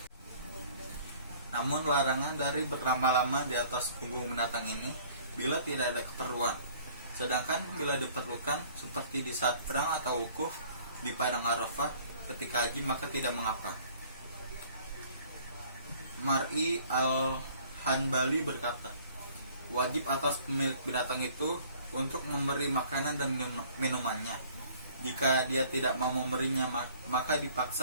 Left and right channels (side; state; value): both; inverted; correlation -0.54